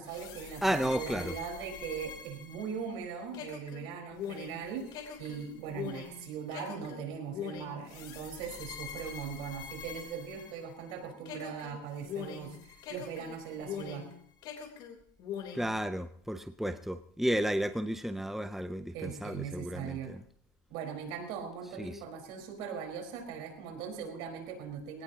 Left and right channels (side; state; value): both; normal; correlation 0.63